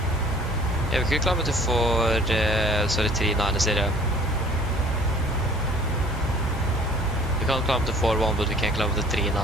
Yeah, we could climb up to 390. We can't climb to 4-1, but we can climb to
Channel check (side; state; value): both; normal; correlation 0.52